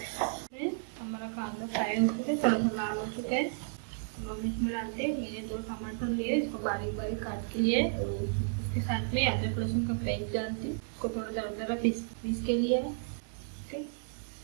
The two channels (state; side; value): silent; left; digital silence